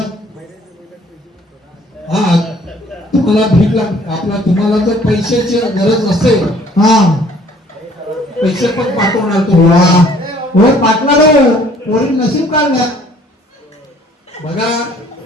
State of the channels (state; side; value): normal; both; correlation 0.57